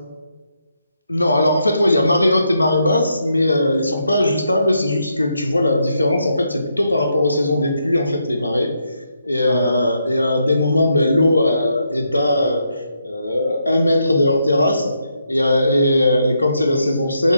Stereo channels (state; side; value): inverted; both; correlation -0.80